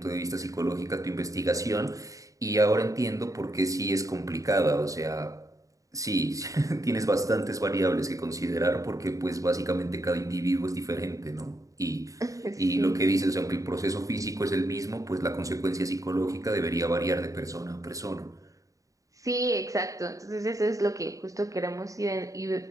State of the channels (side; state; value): left; late; 0.16 ms